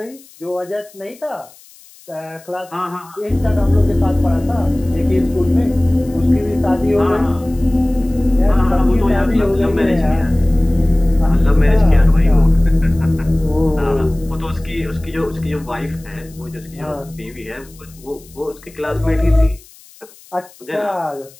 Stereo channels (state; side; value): noise; left; hiss, 25 dB below the sound